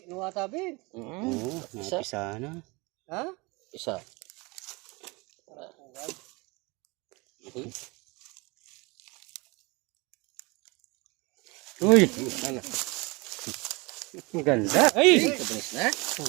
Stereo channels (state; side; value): quieter; left; 26.0 dB